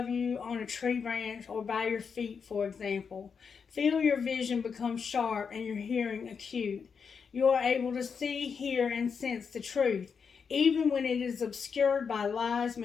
you on a tree branch or by your feet, for example. Feel your vision become sharp and your hearing acute. You are able to see, hear, and sense the truth, even when it is obscured by lies,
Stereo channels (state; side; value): quieter; right; 6.1 dB